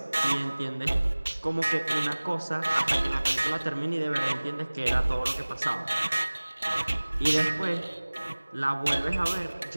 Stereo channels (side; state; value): both; inverted; correlation -1.00